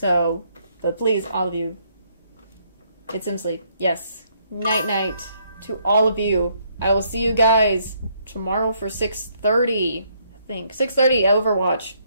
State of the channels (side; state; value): both; inverted; correlation -0.70